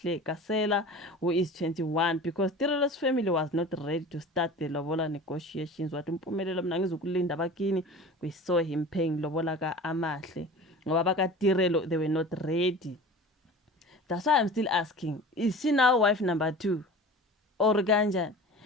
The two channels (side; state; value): both; normal; correlation 0.38